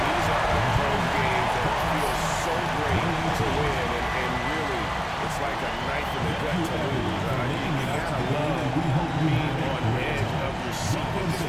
are those games that feel so great to win, and really, it's like a knife in the gut to lose. You gotta love being on the edge of your seat and just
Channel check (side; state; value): both; identical; correlation 1.00